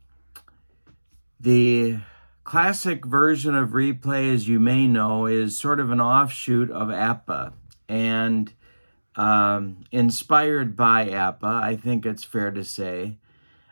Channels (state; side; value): inverted; both; correlation -1.00